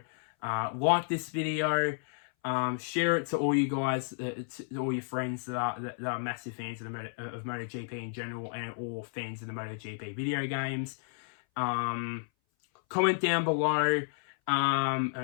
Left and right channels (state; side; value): silent; right; 57 dB below the other